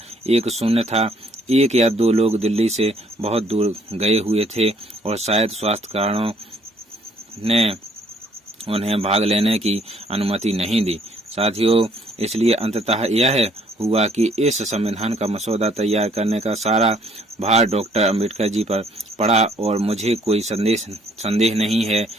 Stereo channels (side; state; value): both; normal; correlation 0.63